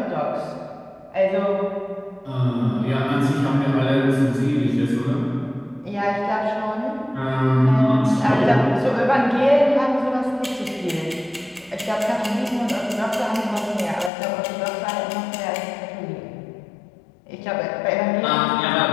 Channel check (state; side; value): drops out; right; at 14.1 s